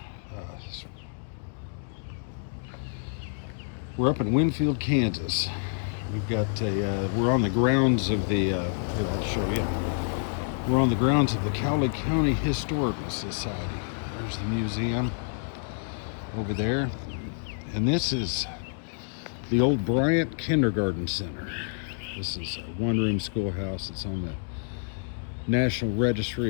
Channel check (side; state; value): right; silent; digital silence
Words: We're up in Winfield, Kansas. We've got we're on the grounds of the, here I'll show you. We're on the grounds of the Cowley County Historical Society. There's the museum over there. And this is the old Bryant Kindergarten Center. This is a one-room schoolhouse. It's on the National Registry